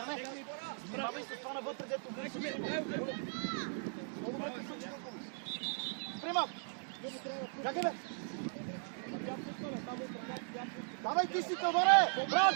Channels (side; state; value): left; silent; 52 dB below the other